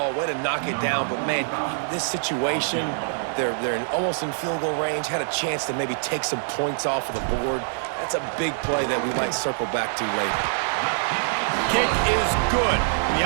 Way to knock it down. But, man, this situation, they're almost in field goal range. Had a chance to maybe take some points off of the board. That's a big play that we might circle back to later. Kick is good. The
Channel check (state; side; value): silent; left; 62 dB below the other